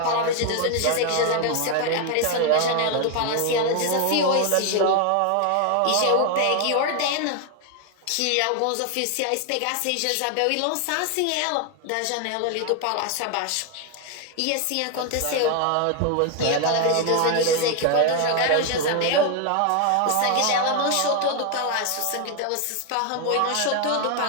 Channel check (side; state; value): both; different; correlation 0.00